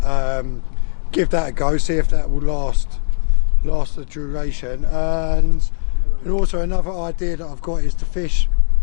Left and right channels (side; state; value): right; silent; digital silence